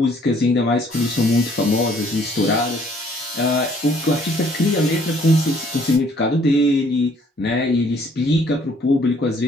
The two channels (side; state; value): both; normal; correlation 0.61